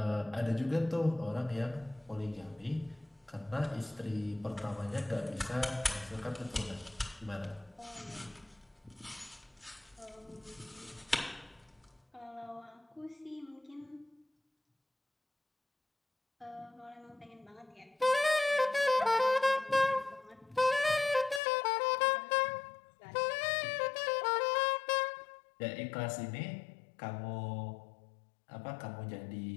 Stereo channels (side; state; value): right; drops out; at 21.4 s